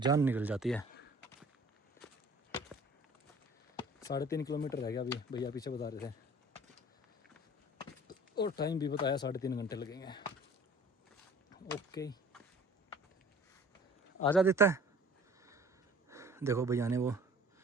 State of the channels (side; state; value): both; normal; correlation 0.48